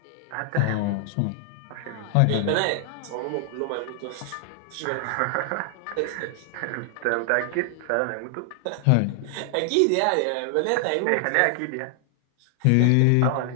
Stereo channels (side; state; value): both; different; correlation 0.00